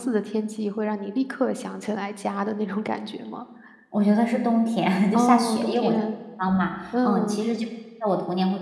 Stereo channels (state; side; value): identical; both; correlation 1.00